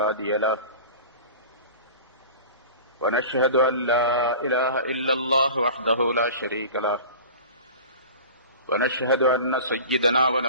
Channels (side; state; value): both; inverted; correlation -0.39